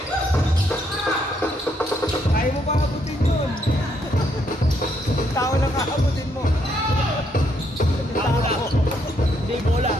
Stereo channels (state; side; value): normal; both; correlation 0.73